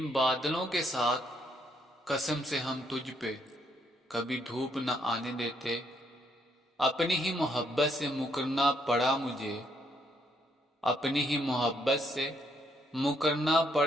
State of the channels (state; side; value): normal; both; correlation 0.72